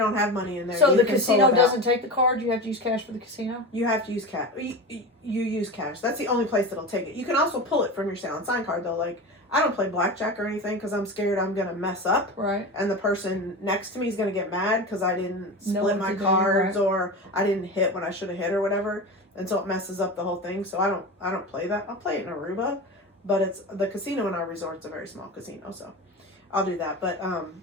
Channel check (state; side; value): normal; both; correlation 0.26